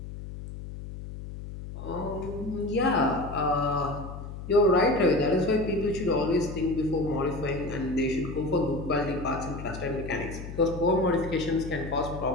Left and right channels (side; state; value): left; noise; hum, 10 dB below the sound